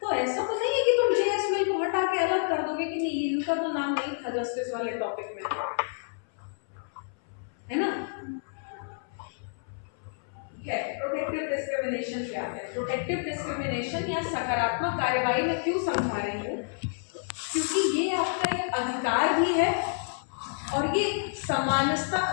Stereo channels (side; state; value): right; silent; 59 dB below the other